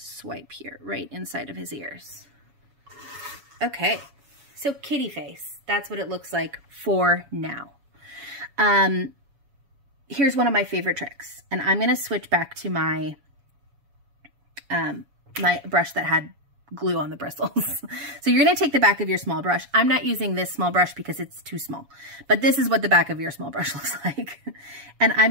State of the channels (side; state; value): left; late; 7.1 ms